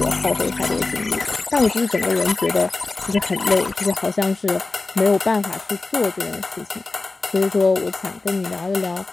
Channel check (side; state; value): right; quieter; 3.5 dB